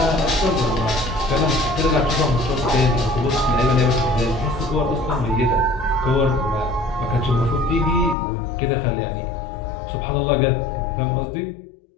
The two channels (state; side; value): drops out; right; at 8.2 s